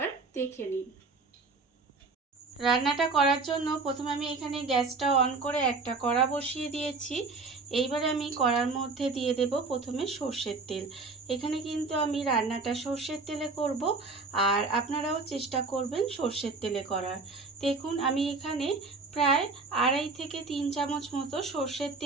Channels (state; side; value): quieter; left; 4.0 dB